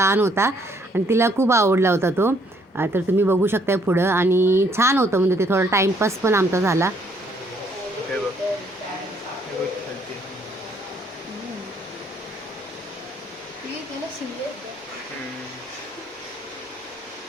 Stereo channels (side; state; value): both; normal; correlation 0.67